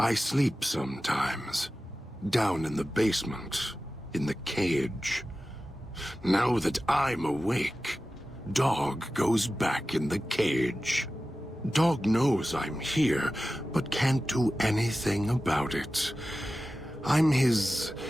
sleep sometimes. Down in the basement, in the cage. Now that I'm awake, Dog goes back in the cage. Dog knows I'm here, but can't do anything about it. I'm his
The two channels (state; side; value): normal; both; correlation 0.94